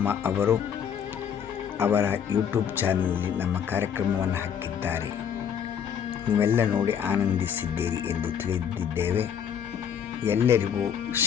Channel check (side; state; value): right; quieter; 8.2 dB